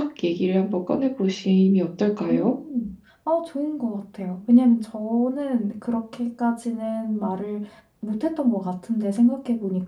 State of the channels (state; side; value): identical; both; correlation 1.00